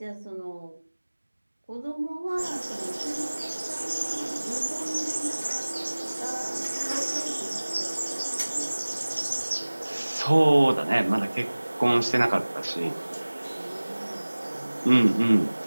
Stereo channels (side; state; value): both; inverted; correlation -1.00